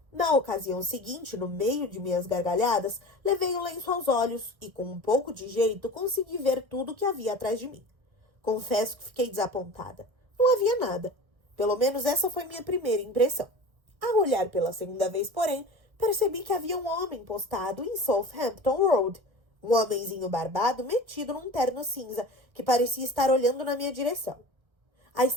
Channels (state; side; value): late; left; 1.3 ms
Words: Na ocasião seguinte, no meio de minhas gargalhadas, levei o lenço aos olhos e, com um pouco de jeito, consegui ver tudo o que havia atrás de mim. Confesso que fiquei desapontada. Não havia nada. Pelo menos essa foi minha primeira impressão. Ao olhar pela segunda vez, porém, percebi que havia um homem postado em Southampton Road. Um homenzinho barbado metido num terno cinza que parecia estar olhando na minha direção. A